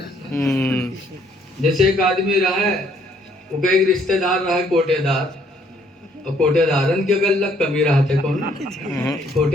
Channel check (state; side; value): normal; both; correlation 0.65